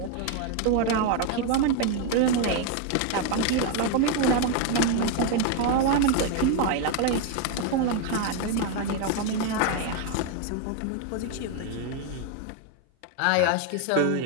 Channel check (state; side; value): different; both; correlation 0.01